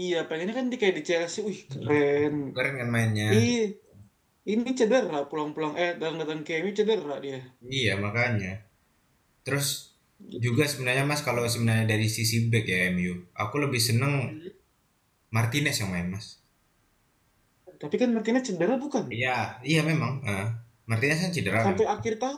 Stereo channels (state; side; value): identical; both; correlation 1.00